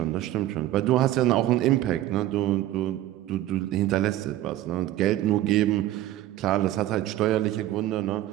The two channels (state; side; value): quieter; left; 14.1 dB